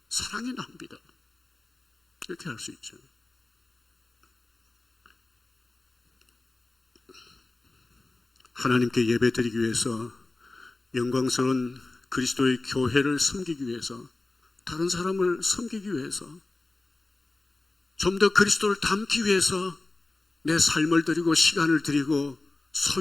사랑의 낭비다 이렇게 할 수 있죠. 하나님께 예배드리기 위해서 영광스러운 그리스도의 교회를 섬기기 위해서 다른 사람을 섬기기 위해서 좀 더 그리스도를 닮기 위해서 내 삶을 드리고 시간을 드리고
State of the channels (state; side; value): quieter; right; 3.1 dB